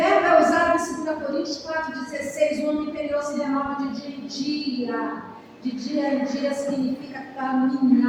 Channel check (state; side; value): identical; both; correlation 1.00